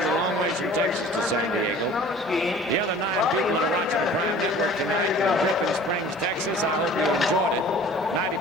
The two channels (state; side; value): normal; both; correlation 0.46